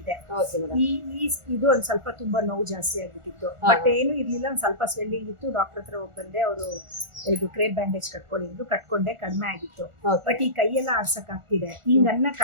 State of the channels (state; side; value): late; left; 1.4 ms